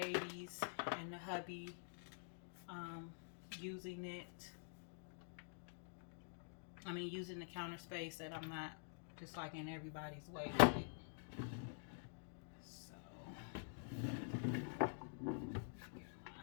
and the hubby using it. I mean, using the counter space, that I'm not just like in everybody's way with it. So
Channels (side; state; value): right; silent; digital silence